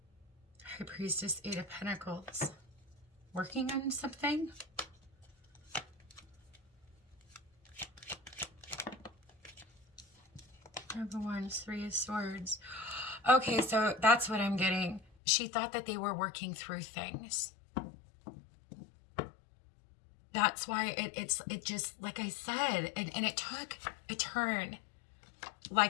High Priestess, 8 of Pentacles. Working on something? Number 1, 3 of Swords. Okay, so that's what I'm getting. She thought that they were working through things. That's why it just, like I said, and it took a turn.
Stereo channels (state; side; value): drops out; right; at 15.1 s